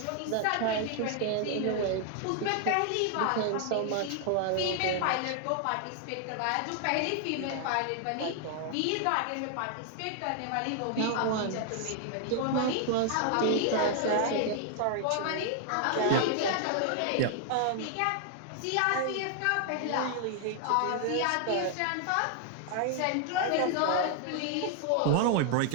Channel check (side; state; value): both; different; correlation 0.00